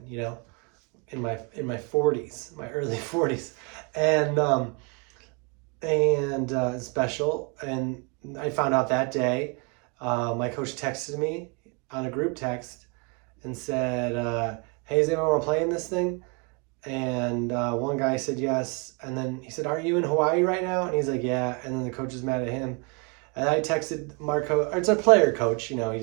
In my 40s, my early 40s, and special. And I found out that day. My coach texted me on a group text and said, "Hey, does anyone want to play in this thing?" And one guy said yes, and then he said, "Are you in Hawaii right now?" And he's like, "Yeah." And then the coach is mad at him, and I texted Marco. Or it's a player coach, he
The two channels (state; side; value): quieter; left; 33.3 dB